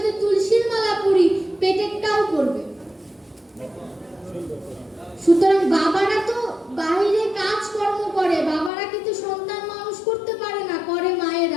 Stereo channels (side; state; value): right; drops out; at 8.7 s